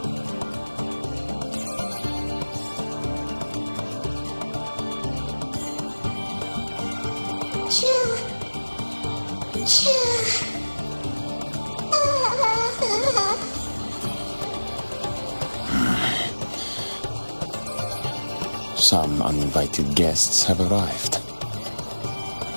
Some uninvited guests have arrived.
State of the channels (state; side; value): inverted; both; correlation -1.00